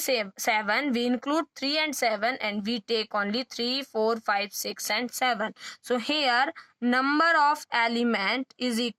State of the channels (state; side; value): identical; both; correlation 1.00